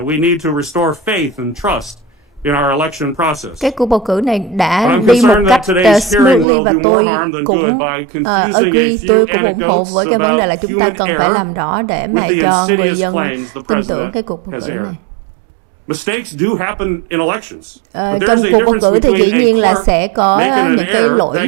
Cái cuộc bầu cử này đã đi một cách smoothly và tôi cũng agree, tôi cũng ủng hộ với cái vấn đề là chúng ta cần phải làm rõ để mà cho người dân tin tưởng cái cuộc bầu cử này. Trong cuộc bầu cử thì dĩ nhiên là sẽ có những cái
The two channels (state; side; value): drops out; left; at 6.5 s